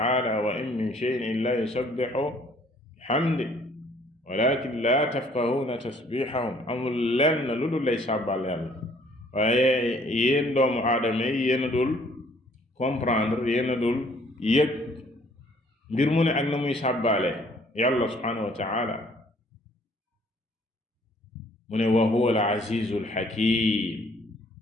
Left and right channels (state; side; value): normal; both; correlation 0.60